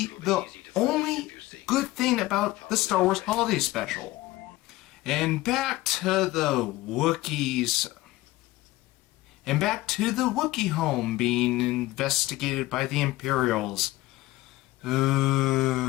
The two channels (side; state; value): right; quieter; 18.2 dB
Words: the only good thing about the Star Wars Holiday Special. And back to the Wookiees. And back to the Wookiee home being investigated by the Imperials.